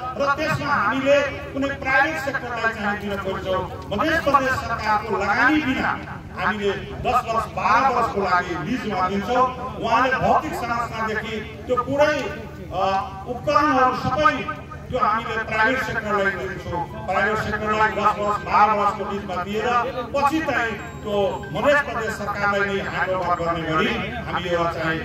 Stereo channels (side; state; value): both; identical; correlation 1.00